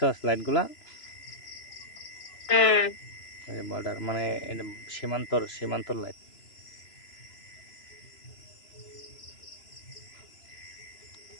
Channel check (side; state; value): right; late; 3.0 ms